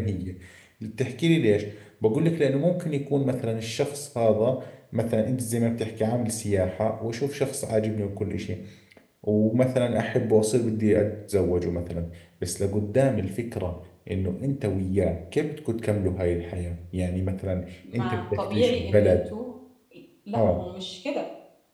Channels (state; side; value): identical; both; correlation 1.00